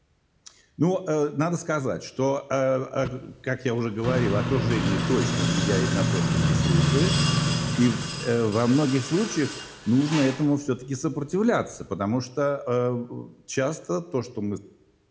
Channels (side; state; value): both; identical; correlation 1.00